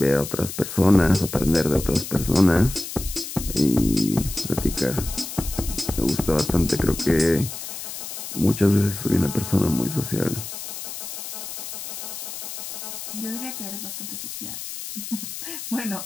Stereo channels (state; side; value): noise; left; hiss, 8 dB below the sound